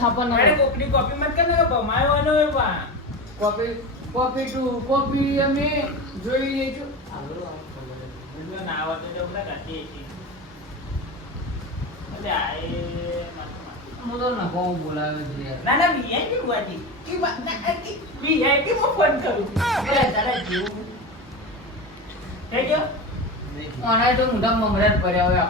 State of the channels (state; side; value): normal; both; correlation 0.24